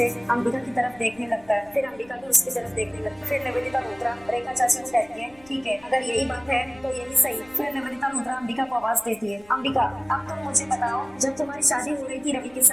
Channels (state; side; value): noise; left; rumble, 27 dB below the sound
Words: अंबिका की तरफ देखने लगता है, फिर अंबिका भी उसकी तरफ देखने लगती है। फिर निवेदिता रुद्रा रेखा चाची को कहती है, ठीक है, अगर यही बात है तो यही सही। फिर निवेदिता रुद्रा अंबिका को आवाज देती है, अंबिका अब तुम मुझे बताओ, जब तुम्हारी शादी हो रही थी रवि के